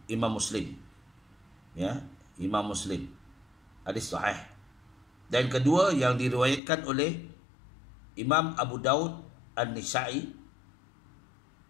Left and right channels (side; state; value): right; drops out; at 6.6 s